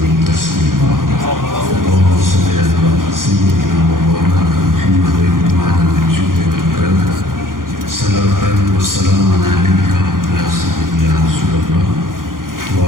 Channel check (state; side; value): late; left; 0.90 ms